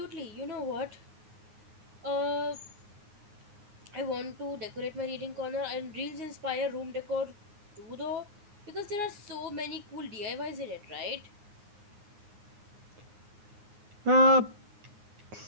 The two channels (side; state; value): left; late; 9.6 ms